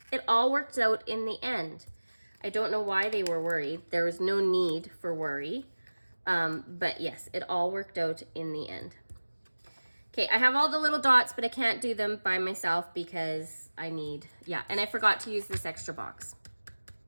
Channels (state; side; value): inverted; both; correlation -1.00